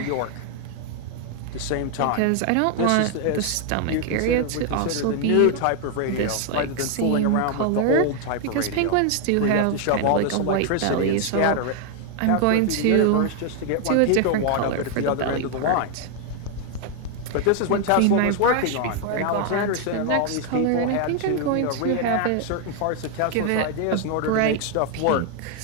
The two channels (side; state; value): both; different; correlation 0.00